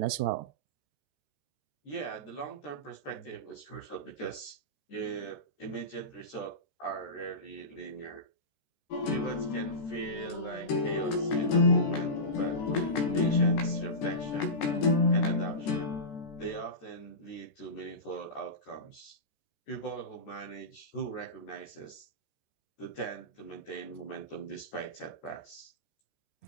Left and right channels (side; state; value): right; late; 14 ms